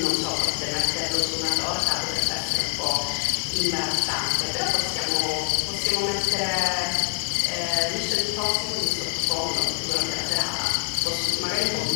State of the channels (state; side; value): silent; right; digital silence